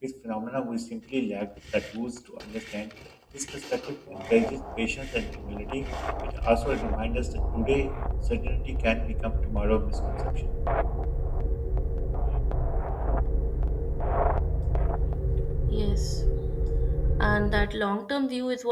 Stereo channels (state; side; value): identical; both; correlation 1.00